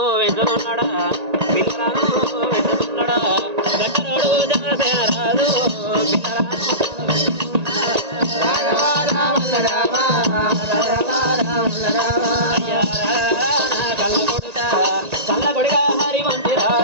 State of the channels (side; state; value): left; late; 1.8 ms